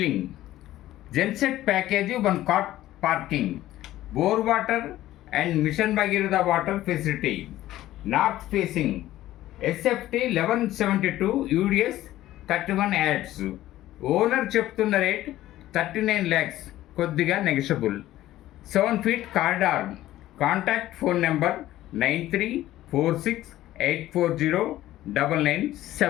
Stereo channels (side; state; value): right; quieter; 14.7 dB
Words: Genset package, 1 car parking, bore water and mission Bhagiratha water facility. North facing. SFT 1172, UDS 31 yards. Owner చెప్తున్న rate 39 lakhs, కొద్దిగా negotiable. 7 feet corridor. Contact phone number